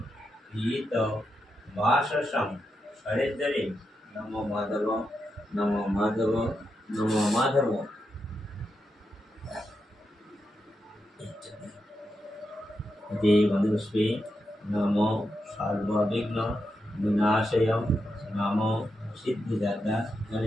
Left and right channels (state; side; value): normal; both; correlation 0.86